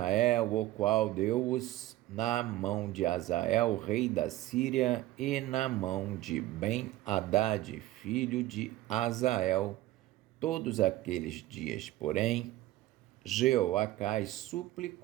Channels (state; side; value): quieter; left; 16.1 dB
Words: o qual deu-os na mão de Azael, rei da Síria, e na mão de Ben-Hadad, filho de Azael, todos aqueles dias. Porém, Jeoacás